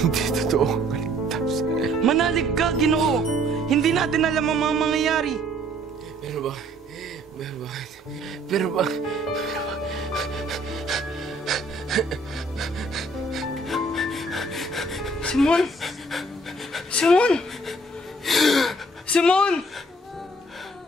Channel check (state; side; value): normal; both; correlation 0.60